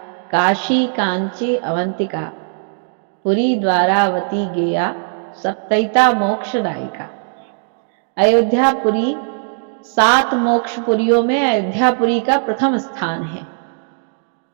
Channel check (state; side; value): silent; left; digital silence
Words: काशी, कांची, अवंतिका, पुरी, द्वारावती, गेया, सप्तैता मोक्षदायिका। अयोध्यापुरी 7 मोक्षपुरियों में अयोध्यापुरी का प्रथम स्थान है।